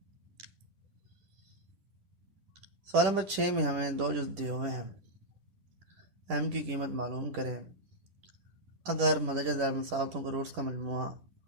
सवाल नंबर 6 में हमें दो जुज़ दिए हुए हैं। एम की कीमत मालूम करें अगर मदरजा ज़रब मसावतों के रूट्स का मजमुआ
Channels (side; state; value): left; late; 10 ms